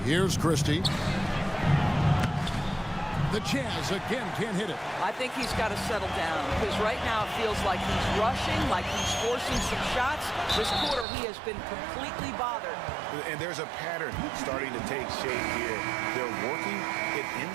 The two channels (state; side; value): drops out; left; at 11.1 s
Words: Here's Christie. The Jazz again can't hit it. I think he's got to settle down because right now it feels like he's rushing, like he's forcing some shots. This quarter he has been completely bothered. And there's a pattern starting to take shape here. They're working it